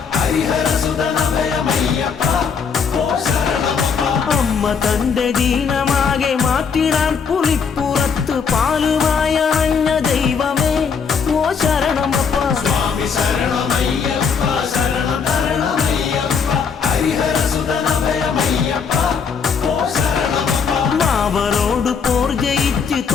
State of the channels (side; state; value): right; quieter; 6.1 dB